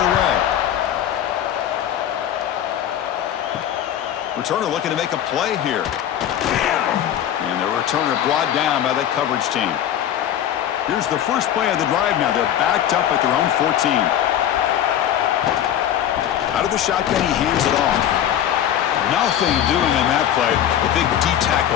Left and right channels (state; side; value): quieter; right; 10.7 dB